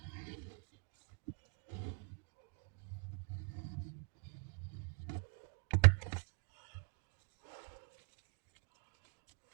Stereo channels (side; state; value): left; quieter; 36.0 dB